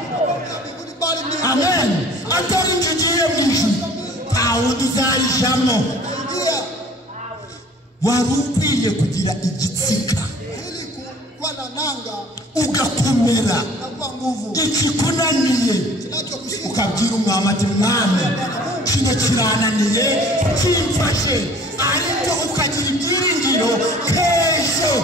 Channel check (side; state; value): both; normal; correlation 0.50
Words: Amen. Atari njugiye mu ijuru. Aho duzarijamo. Warukwiye kugira igitsika ugakomera ikikunaniye ukabwira umwami ati mwami kino kirananiye kimfashe, ariko ukagira ibyiringiro k'ejo